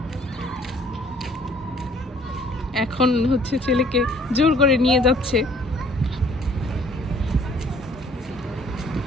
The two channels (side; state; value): both; normal; correlation 0.57